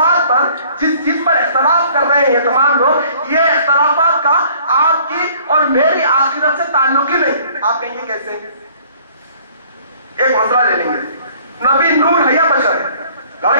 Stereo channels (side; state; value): both; inverted; correlation -0.55